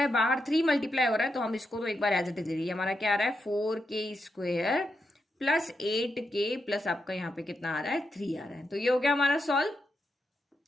है, बाहर 3 मल्टीप्लाई हो रहा है, तो हम इसको तो एक बार एज इट इज ले लीजिए। हमारा क्या आ रहा है, 4k² प्लस 8k प्लस आपका यहाँ पे कितना आ रहा है, 3 आ रहा है। तो ये हो गया हमारा सॉल्व।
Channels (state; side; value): normal; both; correlation 0.84